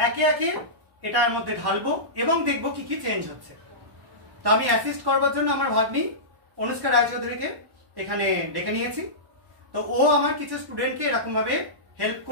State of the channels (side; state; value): left; late; 1.1 ms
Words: একে একে এটার মধ্যে ঢালবো এবং দেখবো কি কি চেঞ্জ হচ্ছে। তো আমি অ্যাসিস্ট করবার জন্য আমার ভাগ্নি অনুষ্কা রায়চৌধুরীকে এখানে ডেকে নিয়েছি। তো ও আমার কিছু স্টুডেন্টকে এরকম ভাবে হেল্প